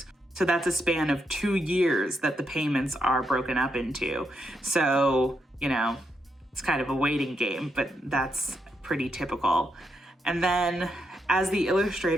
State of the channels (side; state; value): both; normal; correlation 0.81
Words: So that's a span of 2 years that the payments are broken up into. So, it's kind of a waiting game, but that's pretty typical. And then as the